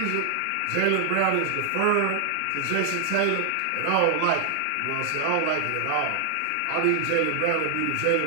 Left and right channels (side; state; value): both; different; correlation 0.00